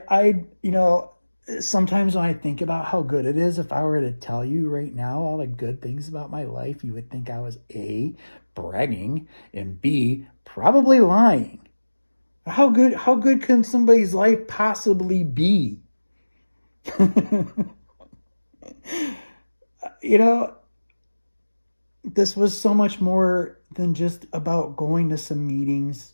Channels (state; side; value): inverted; both; correlation -1.00